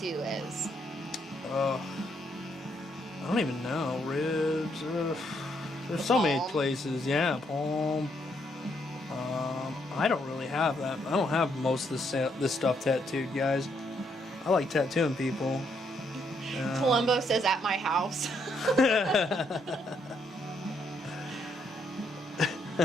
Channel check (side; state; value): both; normal; correlation 0.74